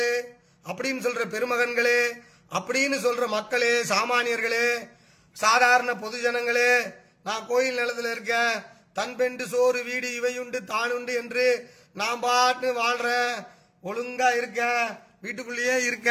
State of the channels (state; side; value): identical; both; correlation 1.00